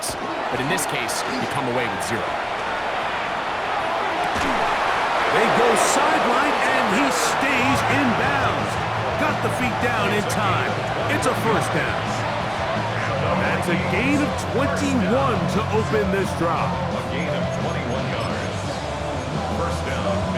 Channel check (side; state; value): both; identical; correlation 1.00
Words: but in this case, you come away with 0. They go sideline, and he stays in bounds. Got the feet down in time. It's a first down. That's a gain of 21 to open this drive. A gain of 21 yards. First down,